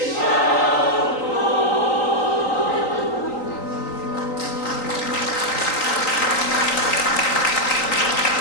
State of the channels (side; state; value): right; late; 3.9 ms